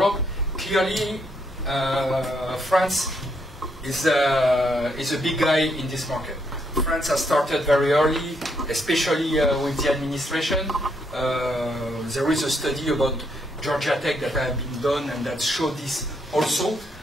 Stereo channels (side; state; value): both; normal; correlation 0.75